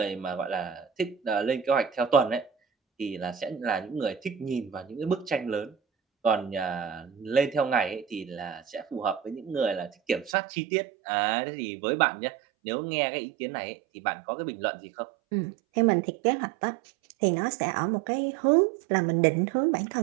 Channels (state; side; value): drops out; left; at 10.4 s